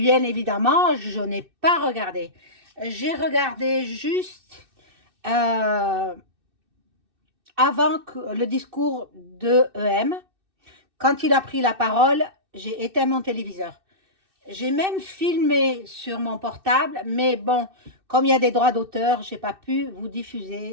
évidemment, je n'ai pas regardé. J'ai regardé juste euh, avant le discours de EM. Quand il a pris la parole, j'ai éteint mon téléviseur. J'ai même filmé sur mon portable, mais bon, comme il y a des droits d'auteur, j'ai pas pu vous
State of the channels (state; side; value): late; left; 2.6 ms